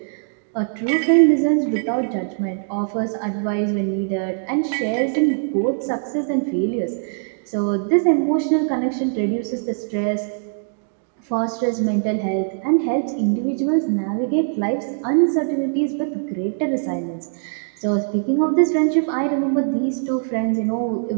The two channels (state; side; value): silent; left; digital silence